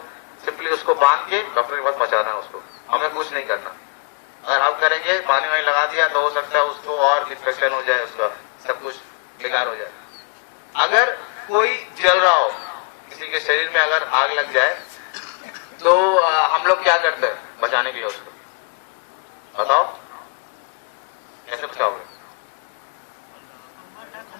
सिंपली उसको बांध के डॉक्टर के पास पहुंचाना है उसको, हमें कुछ नहीं करना। अगर हम करेंगे पानी वानी लगा दिया तो हो सकता है उसको और इन्फेक्शन हो जाए, उसका सब कुछ बेकार हो जाए। अगर कोई जल रहा हो, किसी के शरीर में अगर आग लग जाए तो हम लोग क्या करते हैं बचाने के लिए उसको, बताओ कैसे बचाओगे?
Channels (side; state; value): right; quieter; 34.7 dB